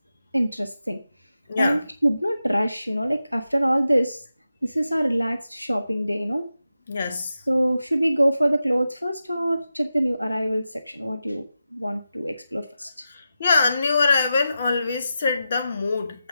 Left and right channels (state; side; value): inverted; both; correlation -0.91